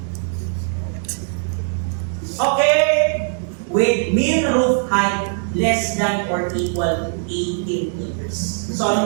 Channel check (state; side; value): silent; left; digital silence